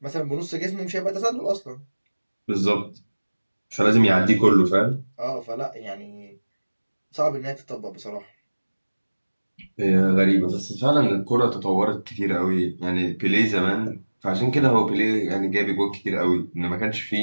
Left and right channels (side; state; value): both; inverted; correlation -1.00